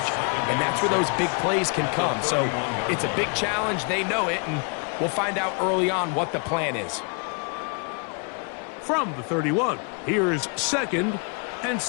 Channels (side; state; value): right; quieter; 37.8 dB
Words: and that's where those big plays can come. So it's a big challenge. They know it, and we'll find out early on what the plan is. From the 31, here's 2nd and